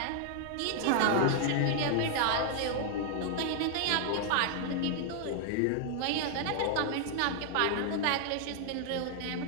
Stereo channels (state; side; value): different; both; correlation 0.00